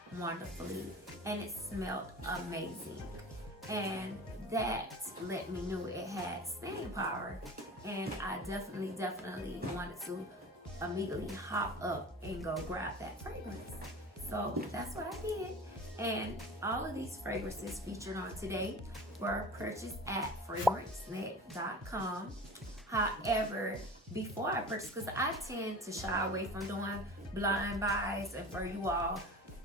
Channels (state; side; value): normal; both; correlation 0.37